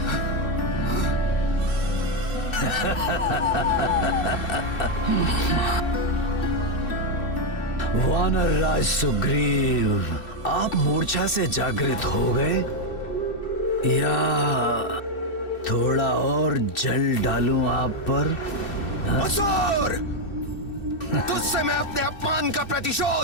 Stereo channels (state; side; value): late; right; 2.7 ms